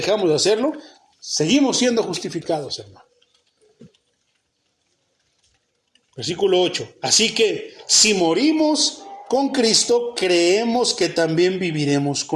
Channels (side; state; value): both; identical; correlation 1.00